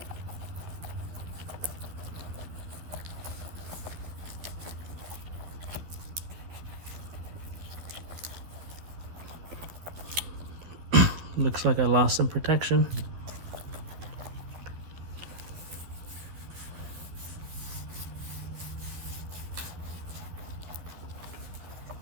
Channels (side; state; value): left; late; 12 ms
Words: looks like I lost some protection.